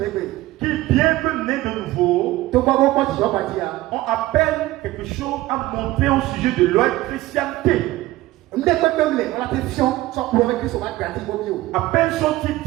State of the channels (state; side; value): quieter; left; 17.4 dB